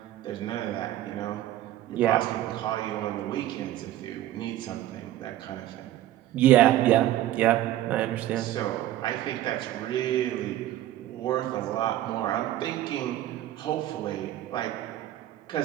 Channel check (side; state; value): left; quieter; 13.7 dB